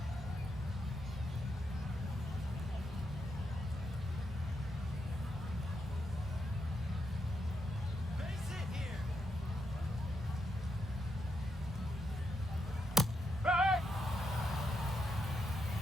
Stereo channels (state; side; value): normal; both; correlation 0.82